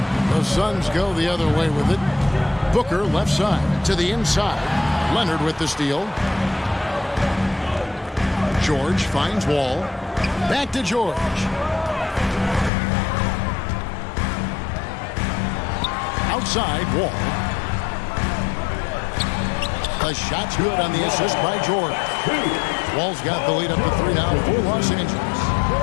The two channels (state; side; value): drops out; right; at 12.7 s